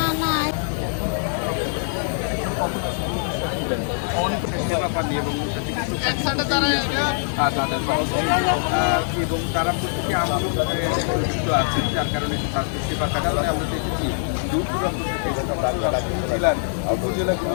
এবং তারা প্রত্যেকে আন্দোলিত আছেন, যার কারণে তাদের সেবার কারণে আমরা দেখেছি দূর দূরান্ত থেকে জেলার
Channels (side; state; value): right; silent; 63 dB below the other